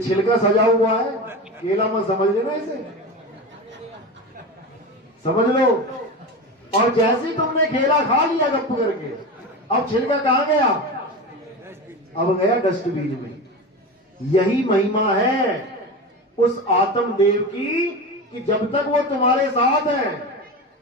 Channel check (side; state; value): both; normal; correlation 0.25